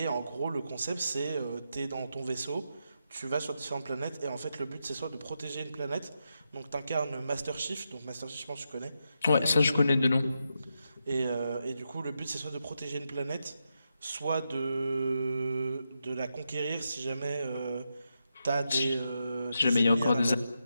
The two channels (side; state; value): both; inverted; correlation -0.85